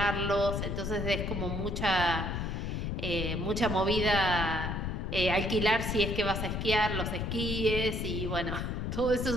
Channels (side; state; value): left; noise; rumble, 2 dB below the sound